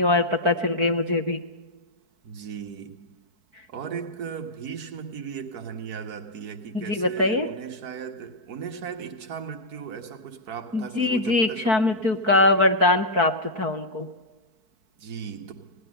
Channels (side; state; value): left; late; 4.6 ms